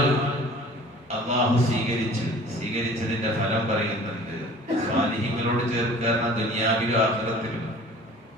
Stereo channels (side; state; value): both; normal; correlation 0.47